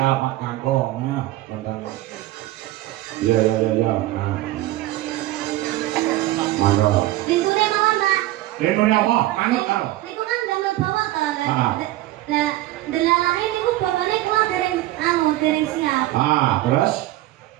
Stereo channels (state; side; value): quieter; left; 16.3 dB